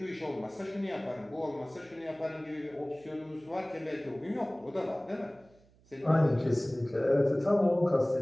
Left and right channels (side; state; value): right; noise; hum, 29 dB below the sound